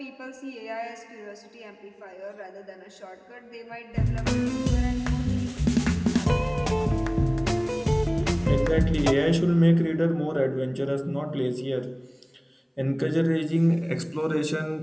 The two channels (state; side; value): identical; both; correlation 1.00